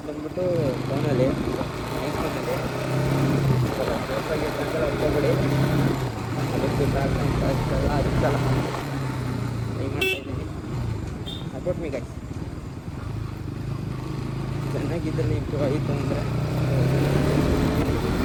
ಬಂದ್ಬಿಟ್ಟು ಫೋನಲ್ಲಿ ಐಫೋನಲ್ಲಿ. ಹೋಗ್ಬೇಡಿ ಅದಕ್ಕೆ ಅದಕ್ಕೆಲ್ಲ ಅದಕ್ಕೆಲ್ಲ ಟ್ರೈ ಮಾಡ್ತಾ ಇದ್ದೀನಿ. Support me guys. ಚೆನ್ನಾಗಿದ್ದರೆ ಇಂಪ್ರೂವ್ ಆಯಿತು ಅಂದರೆ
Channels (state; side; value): identical; both; correlation 1.00